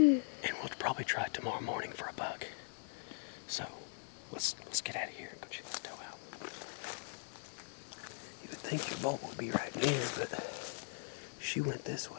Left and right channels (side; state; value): right; silent; digital silence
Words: we'll probably try tomorrow morning for a buck. So let's get out of here and go check this doe out. You would think your bolt would be right near, but she went this